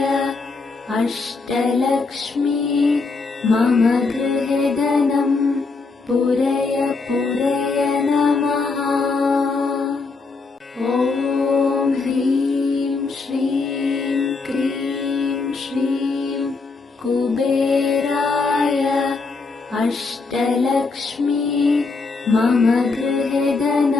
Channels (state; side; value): quieter; right; 4.1 dB